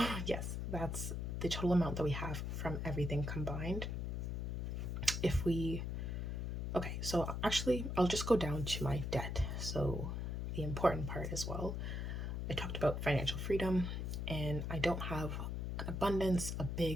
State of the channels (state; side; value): noise; left; hum, 2 dB below the sound